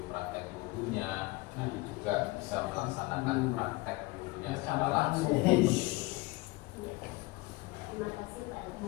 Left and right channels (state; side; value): quieter; right; 22.0 dB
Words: praktek wudhunya. Nanti juga bisa melaksanakan praktek wudhunya secara langsung. Terima kasih Pak Edi